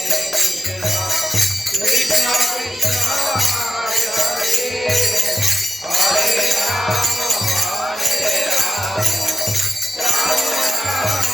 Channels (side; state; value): both; normal; correlation 0.91